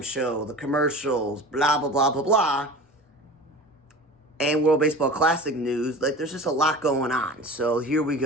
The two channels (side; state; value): both; normal; correlation 0.36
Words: show, the commercials, blah, blah, blah, blah, blah, and World Baseball Classic news. Like, there's just a lot going on. So here we